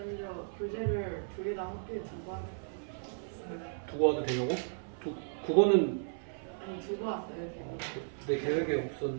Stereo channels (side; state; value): left; silent; 55 dB below the other